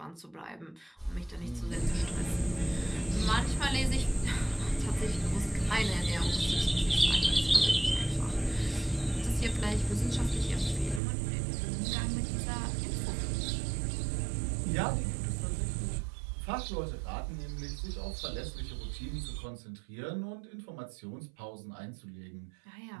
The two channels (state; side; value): drops out; left; at 11.0 s